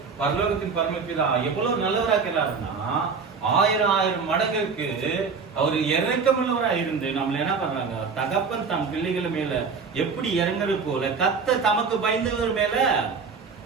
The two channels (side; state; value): left; quieter; 5.2 dB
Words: பரலோகத்தின் பரமபிதா எவ்வளவு நல்லவராக்கிறாருன்னா 1000 மடங்குக்கு அவரு இறக்கமுள்ளவரா இருந்து நம்மள என்ன பண்றாங்க, தகப்பன் தம் பிள்ளைகள் மேல எப்படி இறங்குறது போல கர்த்தர் தமக்கு பயந்தவர் மேல